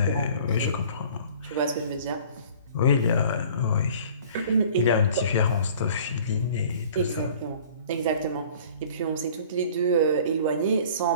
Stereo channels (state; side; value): inverted; both; correlation -0.48